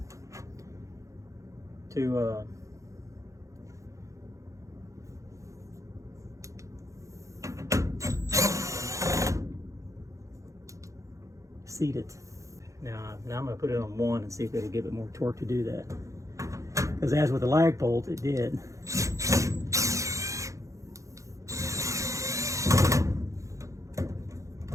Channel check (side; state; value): left; late; 0.15 ms